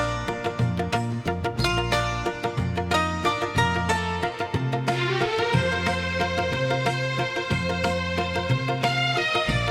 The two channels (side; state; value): both; identical; correlation 1.00